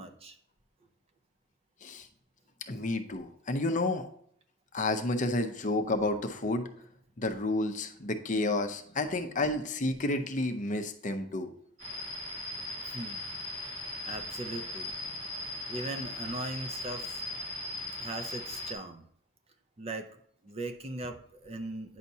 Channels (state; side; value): normal; both; correlation 0.31